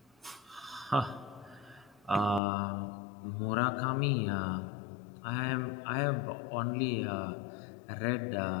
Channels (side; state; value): right; drops out; at 2.4 s